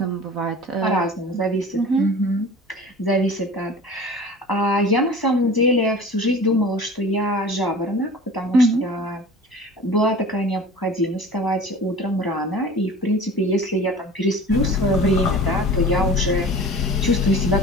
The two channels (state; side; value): normal; both; correlation 0.40